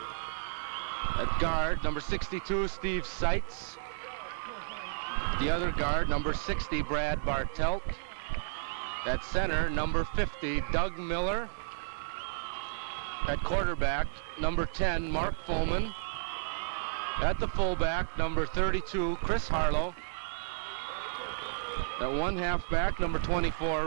At guard, number 62, Steve Seitz. The other guard, number 60, Brad Bartelt. At center, number 50, Doug Miller. At quarterback, number 10, Mark Fulman. At the fullback, number 32, Chris Harlow. At one halfback, number 24,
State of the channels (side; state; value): left; silent; digital silence